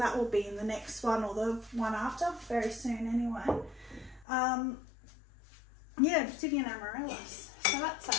will be in the next one or the one after, very soon anyway. Yeah, obsidian amaryllis. So that's a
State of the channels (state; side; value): drops out; right; at 4.2 s